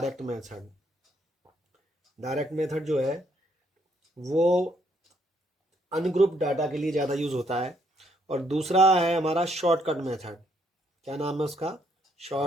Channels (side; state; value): both; normal; correlation 0.70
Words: मेथड। डायरेक्ट मेथड जो है वो अनग्रुप डाटा के लिए ज़्यादा यूज़ होता है। और दूसरा है हमारा शॉर्टकट मेथड। क्या नाम है उसका?